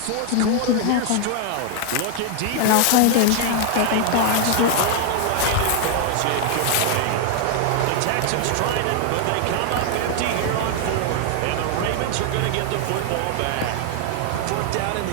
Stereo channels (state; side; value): different; both; correlation 0.00